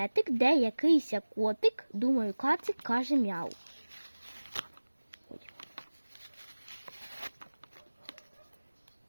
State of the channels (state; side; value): inverted; both; correlation -1.00